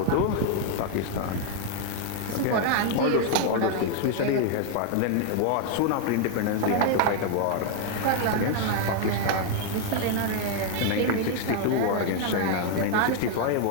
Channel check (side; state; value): both; different; correlation 0.00